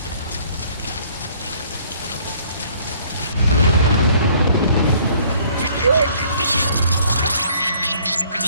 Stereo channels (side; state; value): both; inverted; correlation -0.59